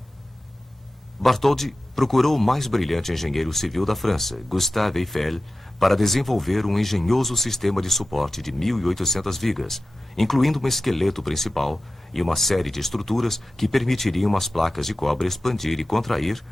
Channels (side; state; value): both; normal; correlation 0.95